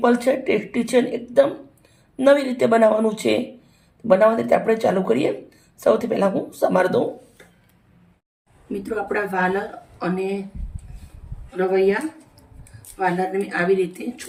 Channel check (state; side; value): identical; both; correlation 1.00